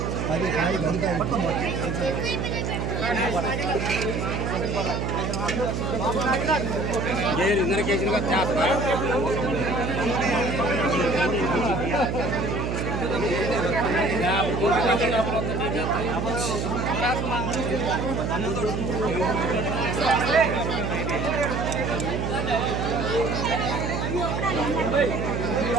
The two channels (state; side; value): noise; right; hum, 1 dB below the sound